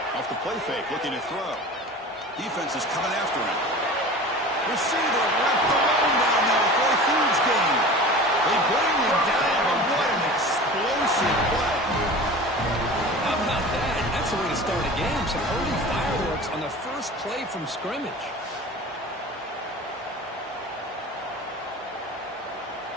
Off the play fake, looking to throw. Defense is coming after him. Receiver left alone down there for a huge gain. They bring him down, and what an explosive play. How about that? That's the way to start a game. Some early fireworks on the first play from scrimmage.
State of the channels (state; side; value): normal; both; correlation 0.37